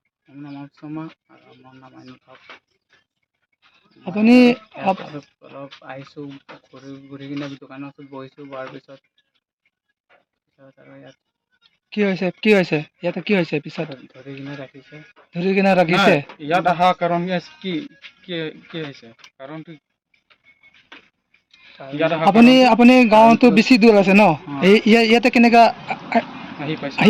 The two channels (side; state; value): both; identical; correlation 1.00